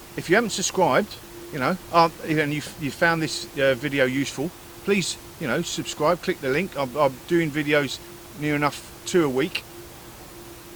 If you haven't subscribed, you know, and you found this video useful, please, you know, subscribe, click the link. I'm doing videos near enough 2 a week,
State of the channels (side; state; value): left; noise; hum, 29 dB below the sound